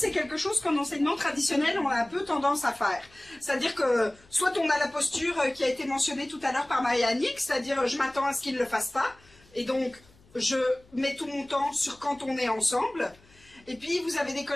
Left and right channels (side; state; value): left; noise; hum, 29 dB below the sound